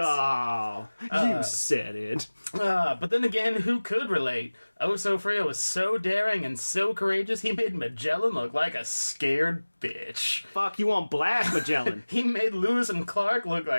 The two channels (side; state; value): both; inverted; correlation -1.00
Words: you said it. But then again, who could relate? Oso Frio was so daring and so courageous, he made Magellan look like a scared bitch. Fuck, you on blast, Magellan. He made Lewis and Clark look